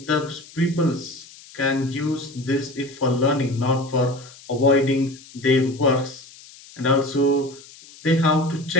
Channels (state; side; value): noise; left; hiss, 21 dB below the sound